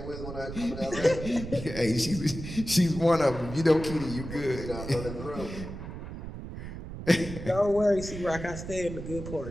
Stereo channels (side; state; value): right; noise; rumble, 9 dB below the sound